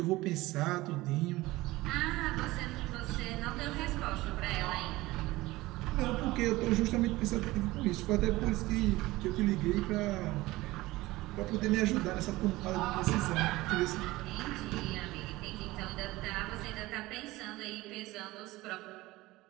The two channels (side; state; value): left; quieter; 19.1 dB